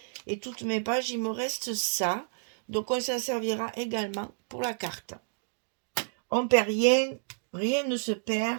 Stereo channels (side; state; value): left; silent; digital silence